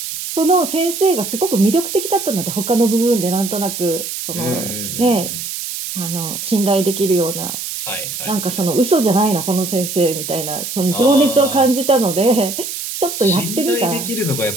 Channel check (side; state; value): right; noise; hiss, 6 dB below the sound